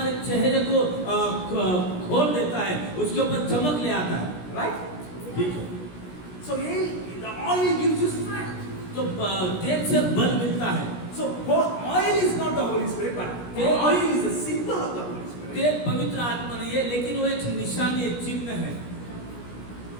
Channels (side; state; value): right; late; 17 ms